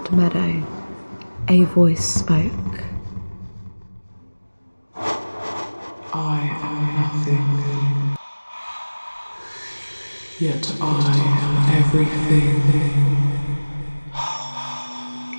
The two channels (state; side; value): inverted; both; correlation -1.00